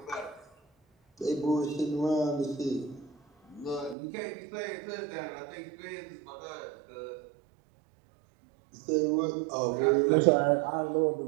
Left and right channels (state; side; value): drops out; left; at 4.0 s